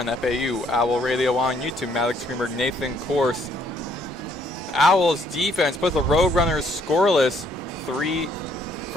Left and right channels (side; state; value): both; normal; correlation 0.67